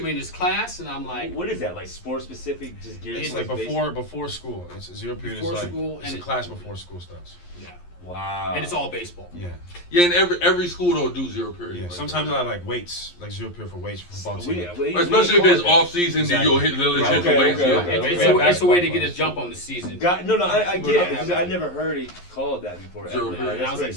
me in this class, and I'm like, "What is that? Like sport specific? Just geared It's like before school. It's zero period. Before is like school, it's and a class before school starts. yeah, wow." and it's all baseball. Yeah. Yeah, and every school don't do zero period. Yeah. Like Sometimes I like weights, like zero period for weights for football team. especially if it's off season, Exactly. then you'll hit the weights. It's a way to get a jump on the season. I get it. Because I never heard it called that before. Zero ever. period. And I was like,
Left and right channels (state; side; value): late; right; 11 ms